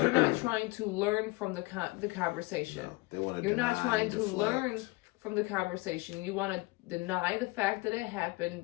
not trying to learn from the conversation. No, they want to. You're not trying to learn from the conversation. You want to deny the fact that it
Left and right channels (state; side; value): quieter; right; 23.9 dB